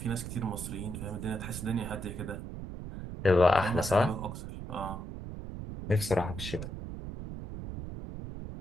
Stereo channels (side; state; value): right; noise; rumble, 8 dB below the sound